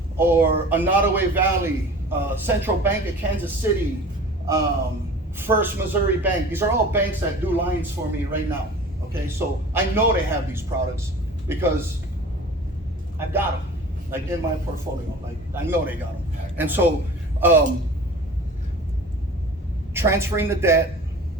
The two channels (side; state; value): both; normal; correlation 0.41